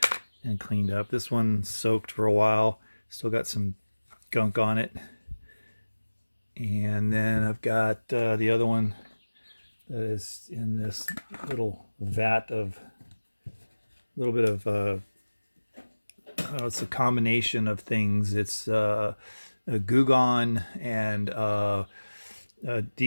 and cleaned up. This one soaked for a while, still got some gunk on it. And then I've got the other one that is in this little vat of a little bit of it's a combination of things. It's a Gugon and a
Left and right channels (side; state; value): both; inverted; correlation -1.00